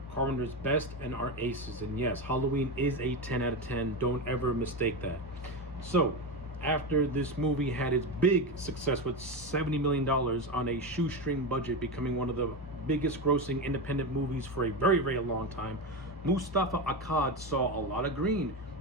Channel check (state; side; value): normal; both; correlation 0.17